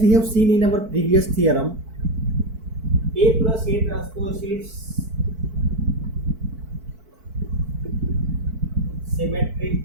we have seen in our previous theorem, A plus A transpose is symmetric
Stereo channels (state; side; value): late; left; 4.5 ms